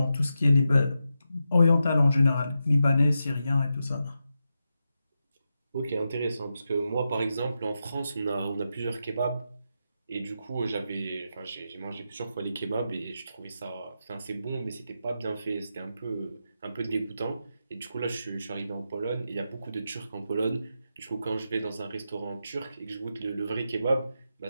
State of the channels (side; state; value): both; inverted; correlation -0.87